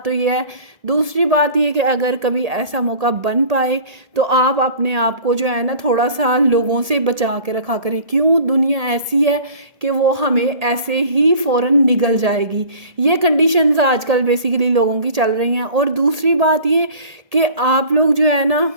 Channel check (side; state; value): left; late; 1.8 ms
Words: تو یہ ہے. دوسری بات یہ کہ اگر کبھی ایسا موقع بن پائے تو آپ اپنے آپ کو جو ہے نا تھوڑا سا لوگوں سے بچا کے رکھا کریں. کیوں دنیا ایسی ہے کہ وہ ہمیں ایسے ہی فوراً نگل جائے گی. یہ کنڈیشنز آج کل بیسیکلی لوگوں کی چل رہی ہیں. اور دوسری بات یہ کہ آپ لوگ جو ہے نا